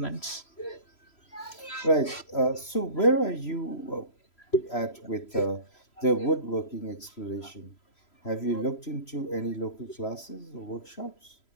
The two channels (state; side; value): late; right; 3.0 ms